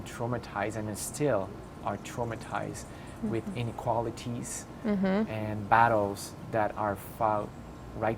traumatized and still are traumatized with inequalities and battles that are fought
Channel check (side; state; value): both; identical; correlation 1.00